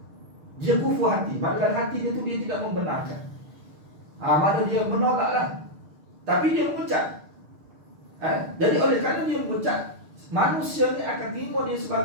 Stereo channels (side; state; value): left; late; 6.6 ms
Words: Dia kufur hati. Dalam hati dia tu dia tidak membenarkan. Mana dia menolaklah. Tapi dia mengucap. Jadi oleh kerana dia mengucap, manusia ni akan terima dia